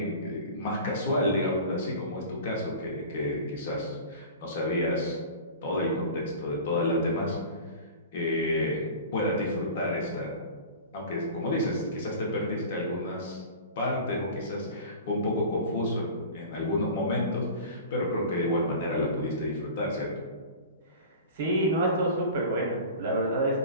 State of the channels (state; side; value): inverted; both; correlation -0.37